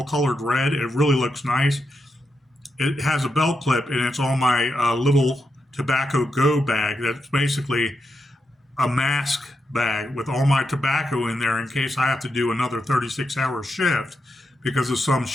colored red. It really looks nice. It has a belt clip, and it's on my little tobacco go bag. That's basically a mask bag with all my tobacco in there in case I have to do another 36-hour shift because of some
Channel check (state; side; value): normal; both; correlation 0.85